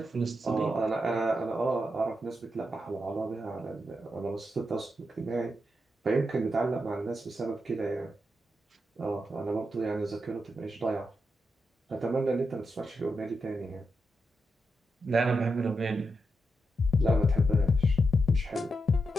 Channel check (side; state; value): both; normal; correlation 0.86